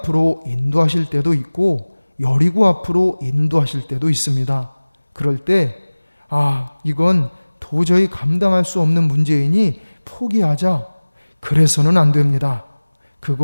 인도하실 때도 있고 여리고 앞으로 인도하실 때도 있습니다. 그럴 때 이건 도저히 감당할 수 없는 문제이니 포기하자. 그래서는 안 됩니다.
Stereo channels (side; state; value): both; inverted; correlation -1.00